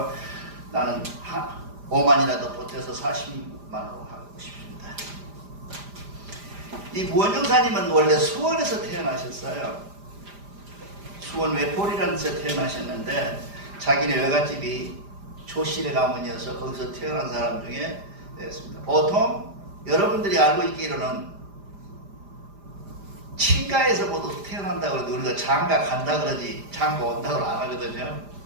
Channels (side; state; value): left; late; 5.0 ms